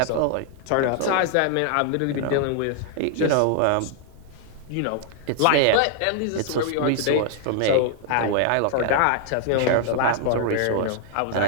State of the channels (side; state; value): both; different; correlation 0.00